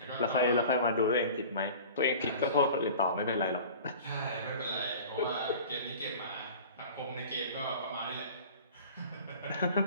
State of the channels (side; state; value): both; inverted; correlation -0.41